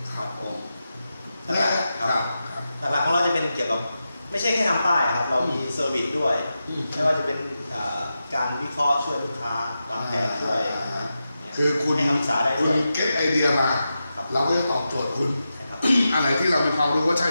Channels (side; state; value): both; inverted; correlation -0.90